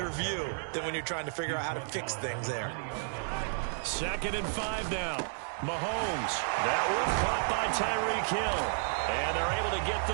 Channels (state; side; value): silent; left; digital silence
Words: view than when you're trying to figure out how to fix things there. 2nd and 5 now. Mahomes. That one caught by Tyreek Hill. And they're able to get